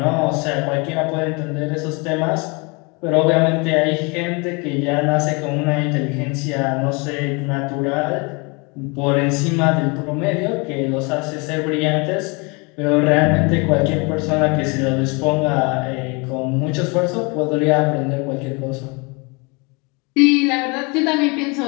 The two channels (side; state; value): right; quieter; 29.3 dB